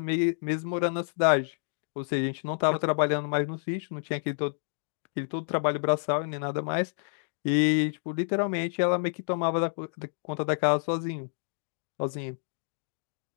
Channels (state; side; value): silent; right; digital silence